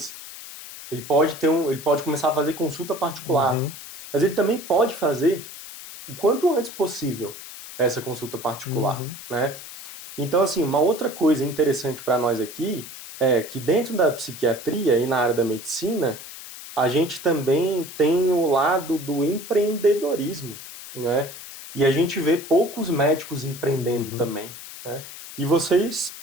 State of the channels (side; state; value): left; noise; hiss, 13 dB below the sound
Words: Ele pode começar a fazer consulta particular. Mas ele também pode fazer o quanto antes possível essa consulta particular, né? Então, assim, uma outra coisa interessante para nós aqui é que dentro da psiquiatria e na área da medicina, a gente também tem o lado do empreendedorismo, né? E a gente vê poucos médicos empreendendo também, né? E você,